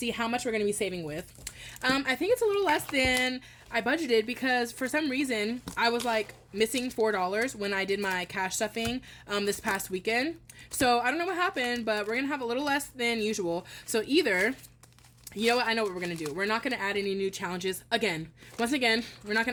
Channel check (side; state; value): both; identical; correlation 1.00